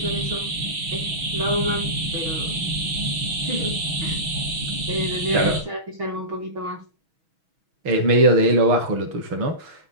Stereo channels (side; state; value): left; late; 6.2 ms